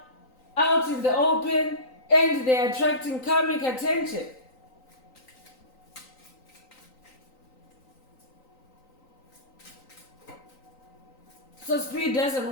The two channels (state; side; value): late; right; 3.9 ms